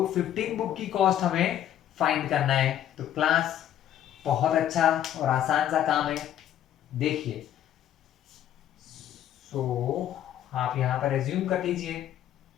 15 बुक की कॉस्ट हमें फाइंड करना है। तो क्लास बहुत अच्छा और आसान सा काम है, देखिए। सो आप यहां पर एज्यूम कर लीजिए,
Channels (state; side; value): quieter; right; 11.1 dB